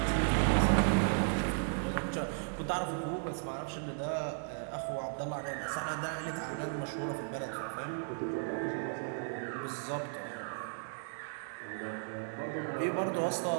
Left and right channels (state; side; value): silent; left; digital silence